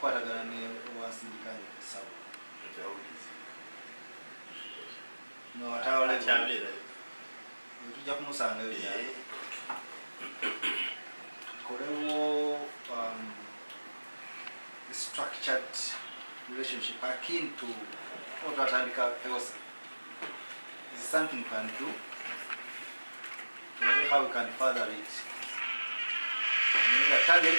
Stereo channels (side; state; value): both; inverted; correlation -1.00